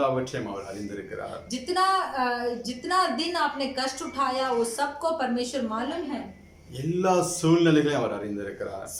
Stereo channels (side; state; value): both; identical; correlation 1.00